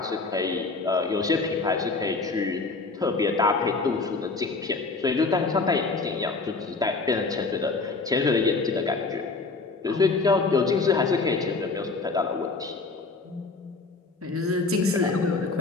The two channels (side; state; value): right; quieter; 3.9 dB